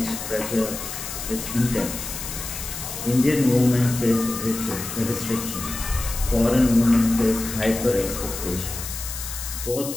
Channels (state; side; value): noise; left; hiss, 8 dB below the sound